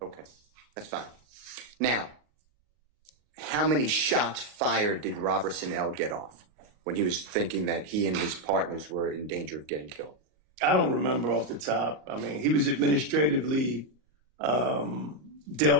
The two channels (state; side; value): late; left; 39 ms